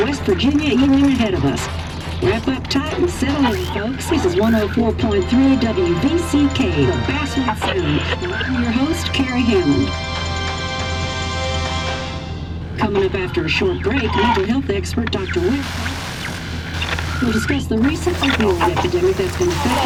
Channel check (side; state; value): both; identical; correlation 1.00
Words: Virginia evening ahead of us. Wrap up tight and settle in, folks. This is 104.3 WVCK, the Basswood Sound. I'm your host, Carrie Hammond. Coming up after a short break, mental health expert Dr. Webb will discuss the recent opioid epidemic that's been